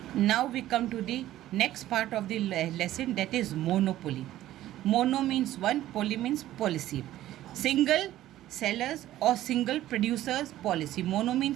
Now we come to the next part of the lesson, that is monopoly. Mono means one, poly means policy. Single sellers or single producers policy. Mono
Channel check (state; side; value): quieter; left; 14.0 dB